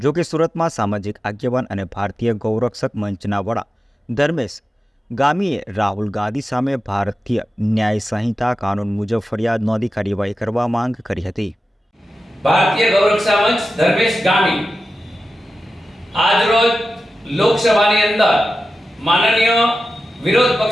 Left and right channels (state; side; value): normal; both; correlation 0.93